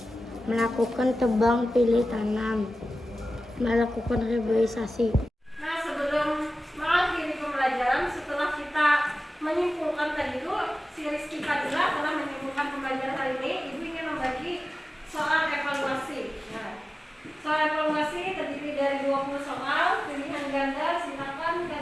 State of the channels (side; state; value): both; normal; correlation 0.95